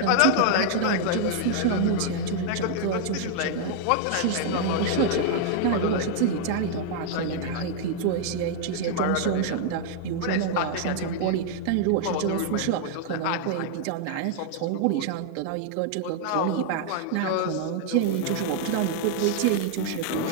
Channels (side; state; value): both; different; correlation -0.01